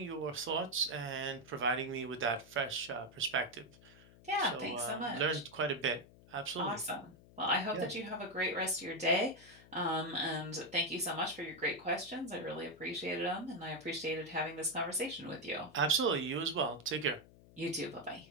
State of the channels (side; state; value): left; noise; hum, 23 dB below the sound